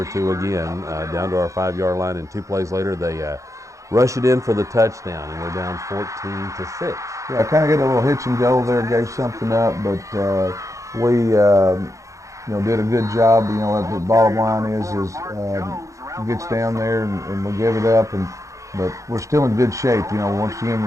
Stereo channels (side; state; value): left; late; 0.15 ms